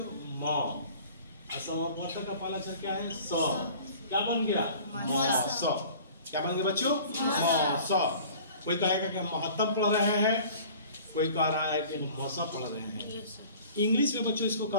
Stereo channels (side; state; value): both; inverted; correlation -0.46